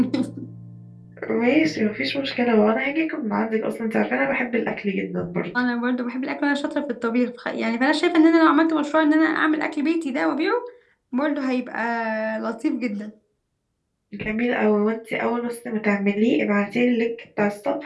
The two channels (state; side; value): identical; both; correlation 1.00